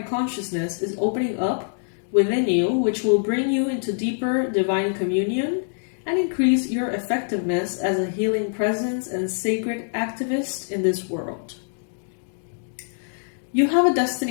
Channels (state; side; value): silent; right; digital silence